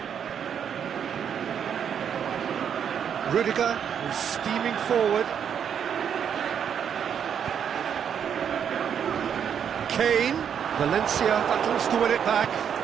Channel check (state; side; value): quieter; left; 8.1 dB